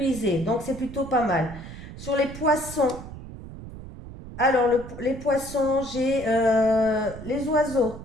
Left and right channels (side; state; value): right; noise; rumble, 13 dB below the sound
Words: Donc, c'est plutôt pas mal. Sur les poissons, alors les poissons, j'ai les oiseaux.